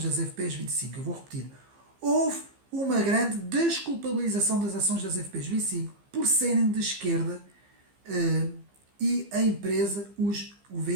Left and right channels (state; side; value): late; left; 15 ms